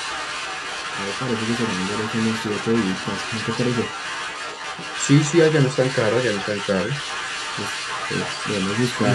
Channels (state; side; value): identical; both; correlation 1.00